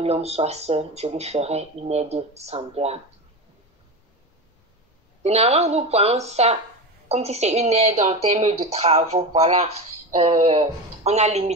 soit seul, je lui ferai une aide semblable. Généralement, nous prenons ça comme si c'est une aide en termes de travaux. Voilà, on a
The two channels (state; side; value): normal; both; correlation 0.22